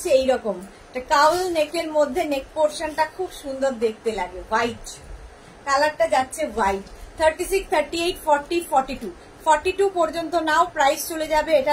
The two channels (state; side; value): identical; both; correlation 1.00